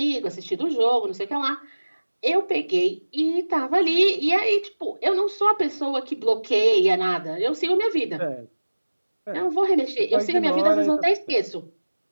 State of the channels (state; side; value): inverted; both; correlation -1.00